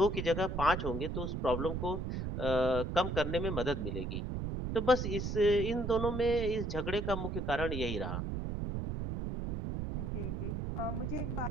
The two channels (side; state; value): right; noise; rumble, 3 dB below the sound